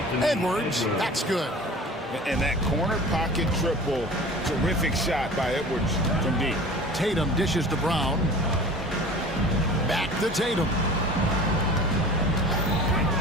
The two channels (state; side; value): normal; both; correlation 0.40